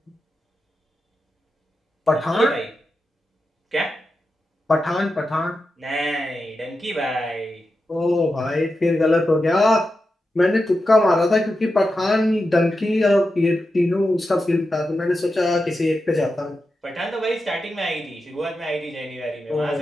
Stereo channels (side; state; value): both; normal; correlation 0.89